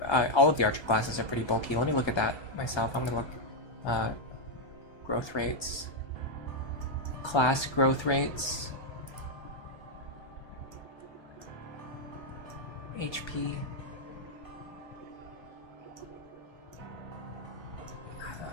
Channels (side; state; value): right; late; 1.3 ms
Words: all of the archer classes are pretty bulky. Let me look at that myself. I'm gonna look, growth rates. Class growth rates. HP.